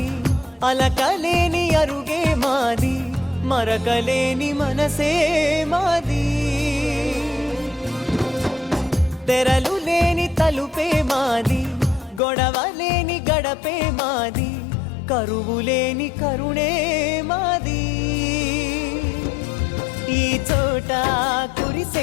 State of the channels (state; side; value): drops out; right; at 12.2 s